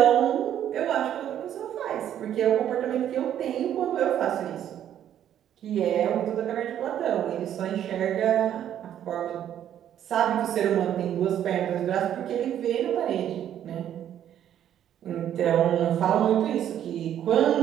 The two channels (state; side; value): quieter; left; 10.5 dB